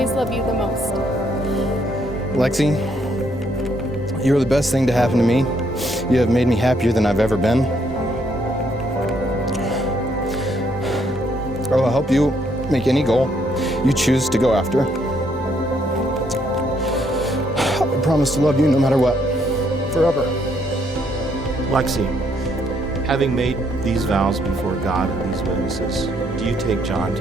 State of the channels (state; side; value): normal; both; correlation 0.71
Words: love you the most. Lexie, you are the best thing to happen to me. You have made me happier than I've ever been. I will help you make any goal you choose to go after. I promise to love you no matter what, forever. Lexie, having made these vows before God and these witnesses, do you take John